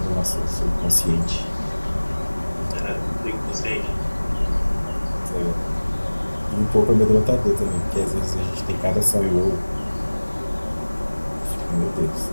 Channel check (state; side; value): inverted; both; correlation -1.00